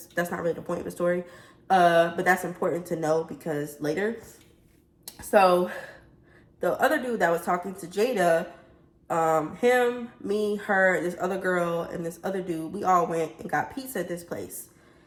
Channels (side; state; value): both; identical; correlation 1.00